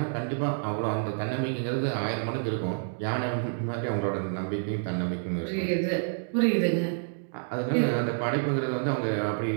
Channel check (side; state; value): left; silent; digital silence